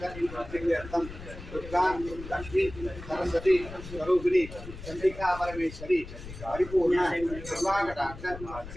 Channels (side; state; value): left; noise; rumble, 13 dB below the sound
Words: सिद्ध्यर्थं दुर्गा लक्ष्मी सरस्वती स्वरूपिणी चंडिका परमेश्वरी परिपूर्ण कृपाकटाक्ष